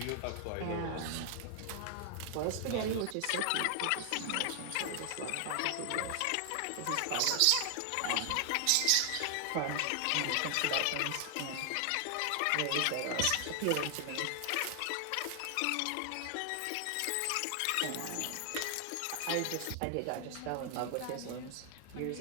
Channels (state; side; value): different; both; correlation 0.00